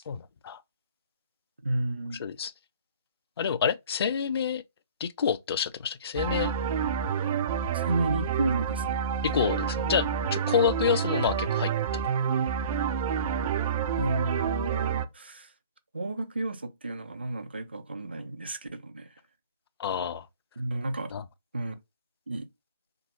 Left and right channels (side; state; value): both; inverted; correlation -0.45